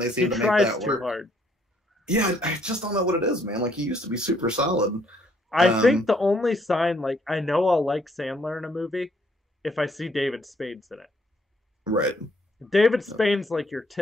they seem to make that work. Too hard. Yeah, I just don't know what it is, man. Like he used to be super solid. I think the only sign, like I know I'll like Sandler in a movie if I see David Spade's in it. Right. David Spade's like your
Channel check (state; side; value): normal; both; correlation 0.68